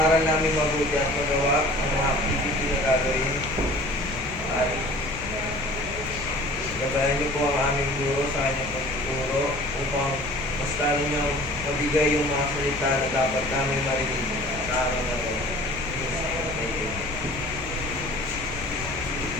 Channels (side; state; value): left; noise; rumble, 12 dB below the sound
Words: namin mabuti at magawa ang mga activity na gagawin. At gabayan niyo po ang aming guro sa kanyang pagtuturo upang mas lalo niyang mabigay yung mga salita na dapat namin marinig sa araw na ito. Thank you.